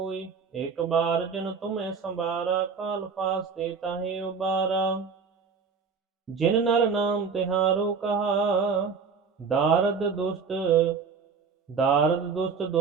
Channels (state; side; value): quieter; left; 5.6 dB